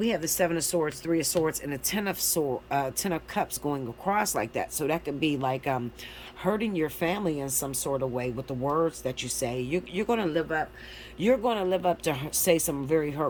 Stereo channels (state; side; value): identical; both; correlation 1.00